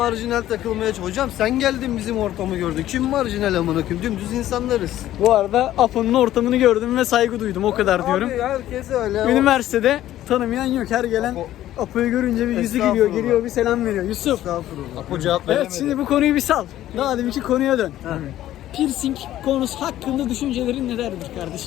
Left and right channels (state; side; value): quieter; right; 13.4 dB